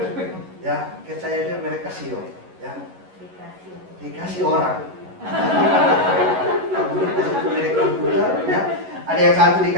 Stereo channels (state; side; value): late; left; 11 ms